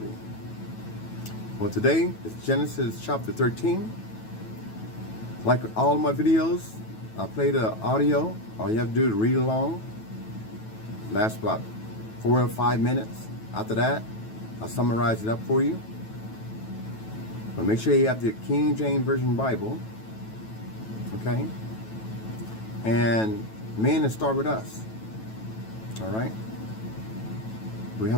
Well, today is Genesis chapter 13. Like all of my videos, I play the audio. All you have to do is read along. Lasts about 4 or 5 minutes. After that, I'll summarize it up for you. But make sure you have the King James Version Bible. Okay? And men, to start with us. All right? We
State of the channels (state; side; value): late; right; 9.2 ms